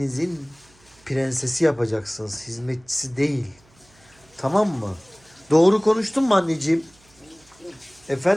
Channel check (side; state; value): right; noise; hum, 30 dB below the sound